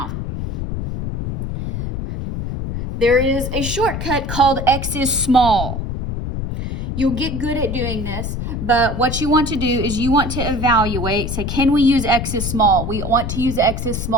there is a shortcut called x is small. You'll get good at doing this, but what you want to do is you want to evaluate, say, can we use x is small? We want to use x is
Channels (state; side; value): noise; left; rumble, 3 dB below the sound